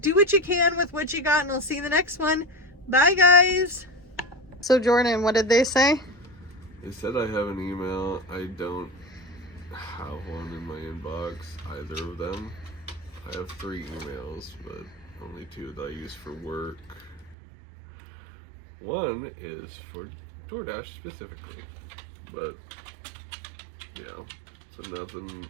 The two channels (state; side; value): drops out; left; at 17.4 s